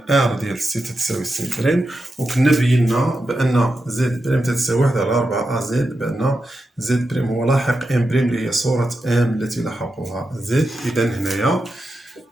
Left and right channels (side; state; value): both; normal; correlation 0.88